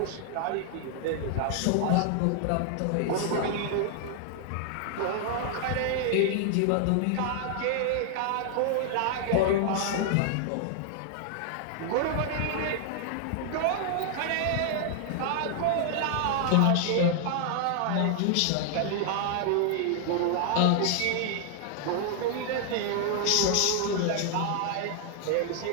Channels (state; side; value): different; both; correlation 0.00